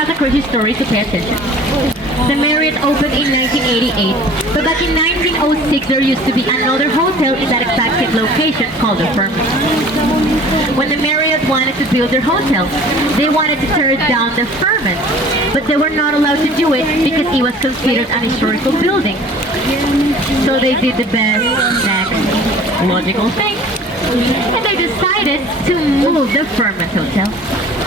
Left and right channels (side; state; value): both; normal; correlation 0.47